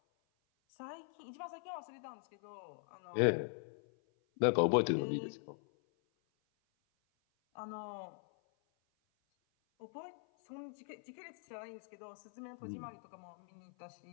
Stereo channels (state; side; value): silent; right; 50 dB below the other